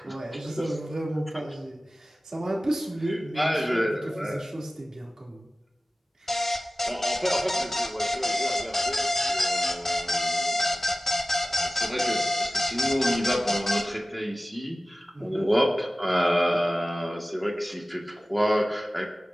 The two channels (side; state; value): both; normal; correlation 0.97